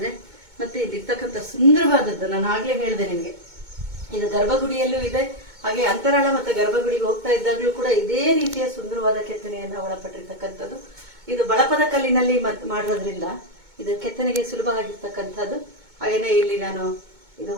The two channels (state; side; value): late; left; 2.2 ms